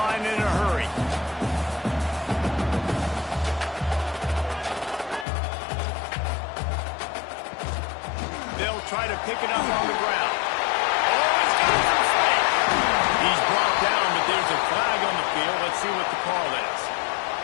in a hurry. They'll try to pick it up on the ground. Oh, he's got some space. He's brought down, but there's a flag on the field. Let's see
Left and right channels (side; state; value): right; drops out; at 5.2 s